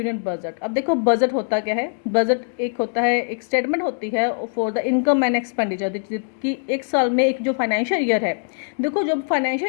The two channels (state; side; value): silent; right; digital silence